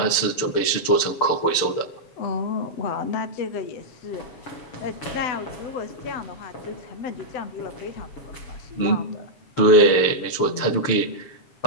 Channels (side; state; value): right; late; 6.8 ms